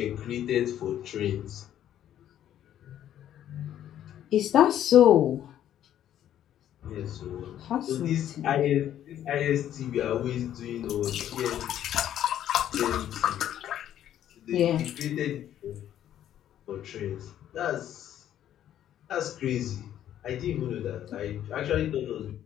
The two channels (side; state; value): right; quieter; 11.2 dB